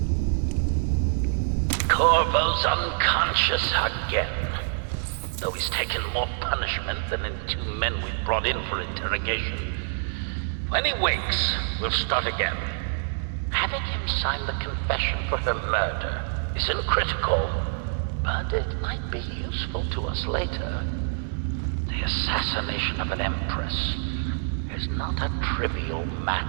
Corvo's unconscious again. Though he's taken more punishment than in 2 men we brought in for interrogation. When he wakes, we'll start again. Having him sign the confession for her murder isn't critical, but it might be useful to us later. The assassination of an empress is not a trivial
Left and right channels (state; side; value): silent; left; digital silence